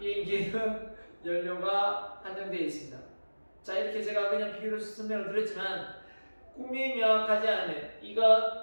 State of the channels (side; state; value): both; inverted; correlation -1.00